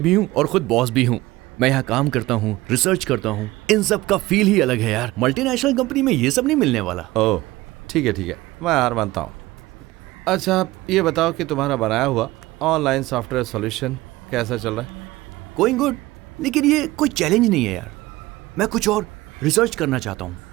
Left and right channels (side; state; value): left; quieter; 18.8 dB